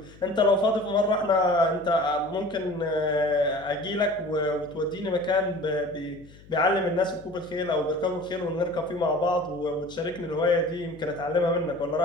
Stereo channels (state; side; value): noise; left; hum, 22 dB below the sound